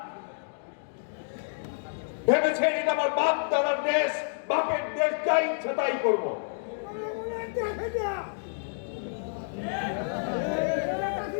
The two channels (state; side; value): silent; right; digital silence